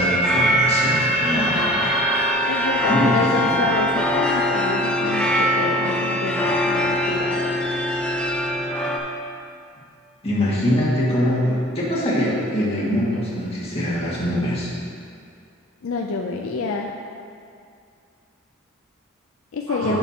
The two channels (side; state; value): both; normal; correlation 0.45